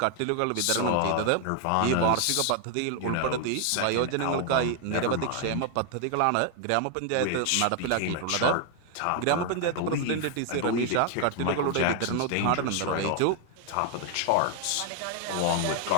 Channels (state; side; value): different; both; correlation 0.00